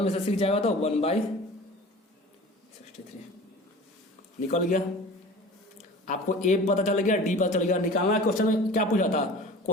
से 6 जाएगा तो 1/63 निकल गया। आपको A पता चल गया, D पता चल गया, निकालना क्वेश्चन में क्या पूछा था,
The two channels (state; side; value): normal; both; correlation 0.40